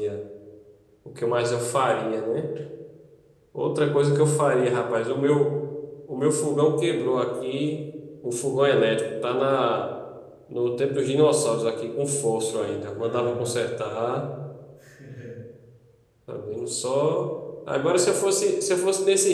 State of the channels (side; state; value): both; identical; correlation 1.00